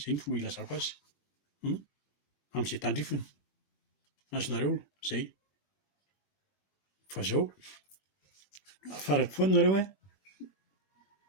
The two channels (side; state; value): right; late; 20 ms